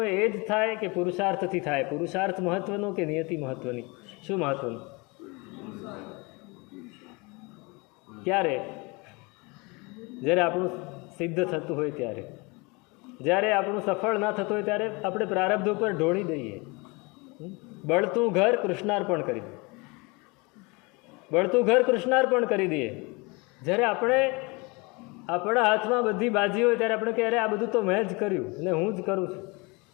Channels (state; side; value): quieter; right; 27.4 dB